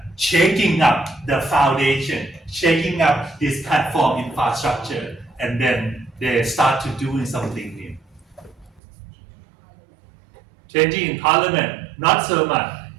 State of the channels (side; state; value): left; drops out; at 8.8 s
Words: shaking up the foundation, shaking up this platform infrastructure, and then they start to doing something new. Changing in parliament, not so much,